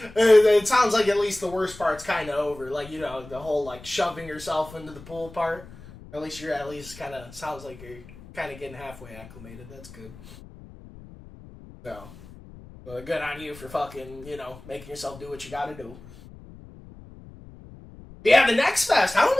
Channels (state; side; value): noise; left; rumble, 18 dB below the sound